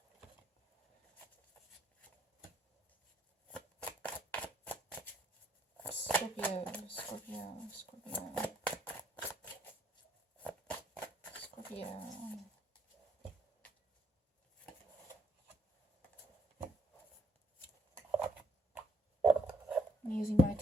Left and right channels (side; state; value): both; normal; correlation 0.69